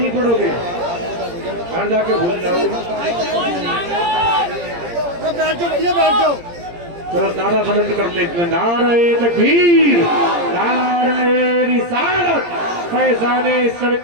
पढ़ोगे, घर जाके भूल जाओगे। बैठ जाओ भैया, बैठ जाओ। चलो नारा बुलंद कर लेते हैं, नारे तकबीर, नारे रिसालत, फैजाने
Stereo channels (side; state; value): left; late; 17 ms